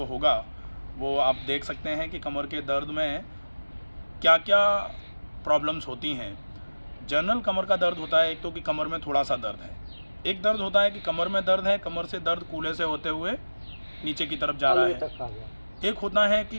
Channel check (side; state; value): both; inverted; correlation -1.00